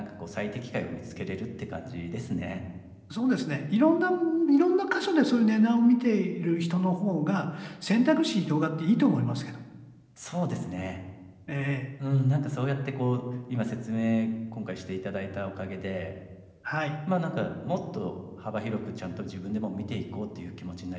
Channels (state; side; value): identical; both; correlation 1.00